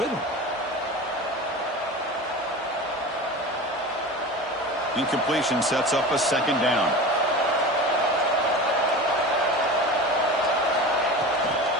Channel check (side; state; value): both; normal; correlation 0.32